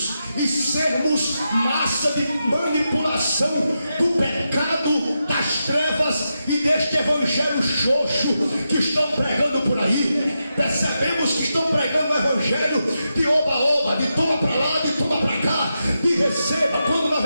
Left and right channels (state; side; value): inverted; both; correlation -0.88